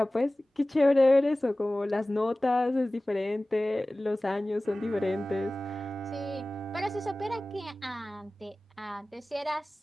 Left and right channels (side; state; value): both; normal; correlation 0.98